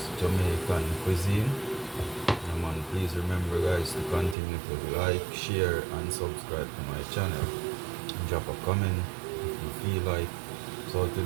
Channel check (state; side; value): drops out; left; at 4.4 s